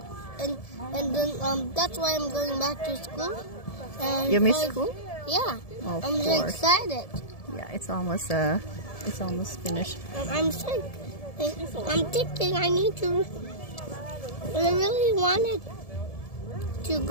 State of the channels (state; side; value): late; right; 1.7 ms